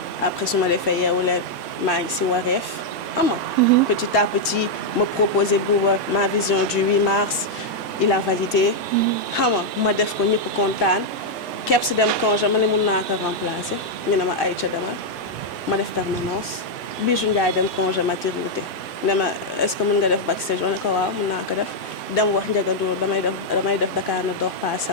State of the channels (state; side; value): normal; both; correlation -0.02